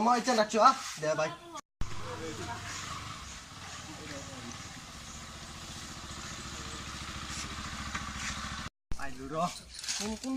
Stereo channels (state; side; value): identical; both; correlation 1.00